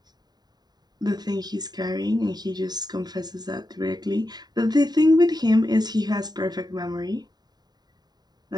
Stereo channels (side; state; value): left; late; 0.20 ms